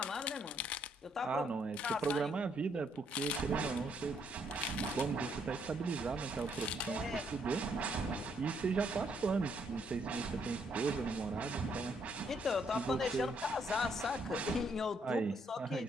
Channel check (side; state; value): both; normal; correlation 0.71